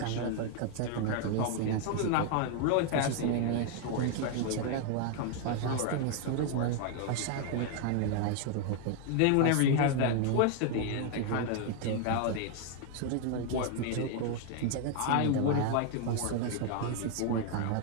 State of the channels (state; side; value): different; both; correlation 0.00